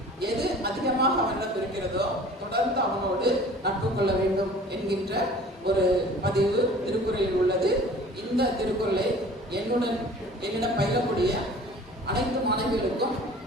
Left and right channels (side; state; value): both; normal; correlation 0.46